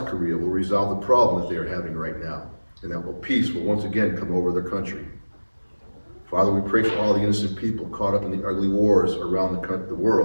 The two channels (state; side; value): inverted; both; correlation -1.00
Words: Korea will resolve the problem that they are having right now, and that peace will once again come over their country. Father, we pray for all the innocent people caught up in the ugly wars around the